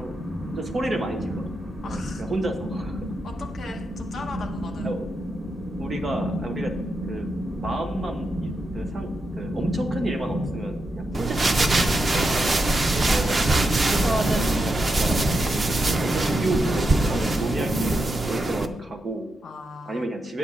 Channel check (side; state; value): both; normal; correlation 0.86